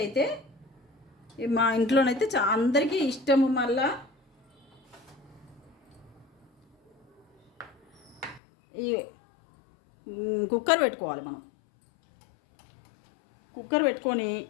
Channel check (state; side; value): drops out; right; at 8.4 s